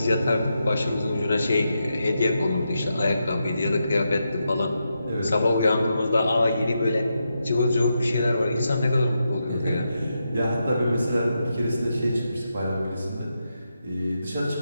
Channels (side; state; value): both; inverted; correlation -0.85